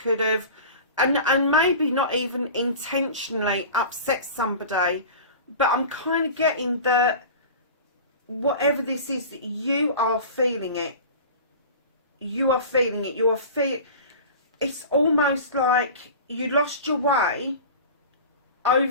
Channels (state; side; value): inverted; both; correlation -0.36